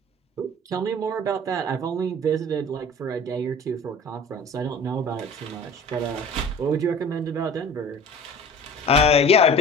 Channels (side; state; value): both; normal; correlation 0.42